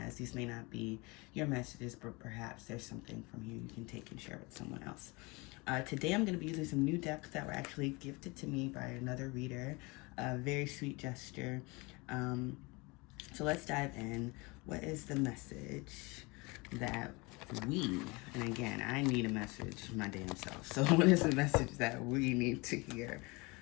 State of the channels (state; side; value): quieter; right; 26.1 dB